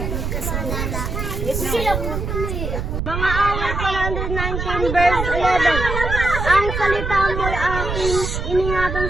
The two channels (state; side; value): noise; right; rumble, 3 dB below the sound